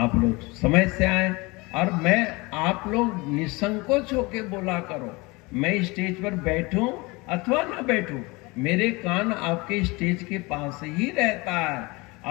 लोग समय से आए, और मैं आप लोग निसंकोच होकर बोला करो। मैं स्टेज पर बैठूं अथवा ना बैठूं, मेरे कान आपके स्टेज के पास ही रहता है,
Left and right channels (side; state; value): right; quieter; 24.9 dB